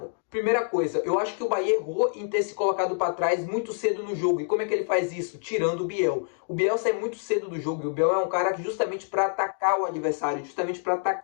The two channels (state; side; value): silent; right; digital silence